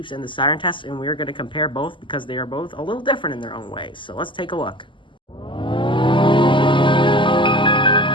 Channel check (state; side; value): late; right; 0.24 ms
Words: and the siren test, and we're going to compare both because they are both a little different in their own ways. So let's take a look.